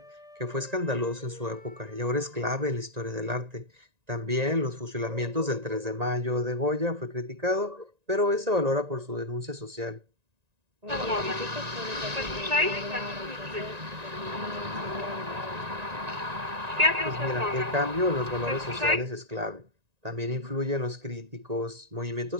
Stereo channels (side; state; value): left; late; 1.9 ms